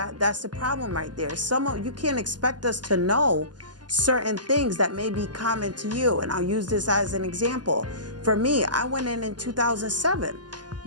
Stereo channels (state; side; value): late; left; 0.70 ms